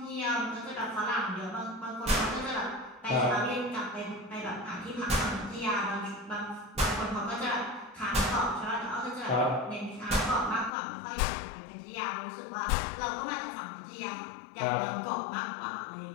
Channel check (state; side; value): drops out; right; at 10.7 s